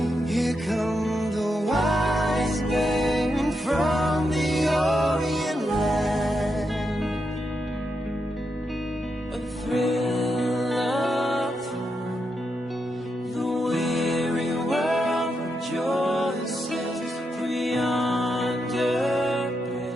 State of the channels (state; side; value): normal; both; correlation 0.84